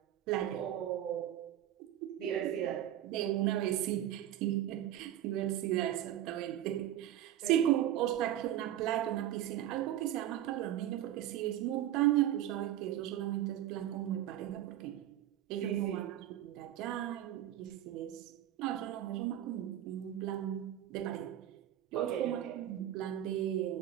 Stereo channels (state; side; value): quieter; left; 12.2 dB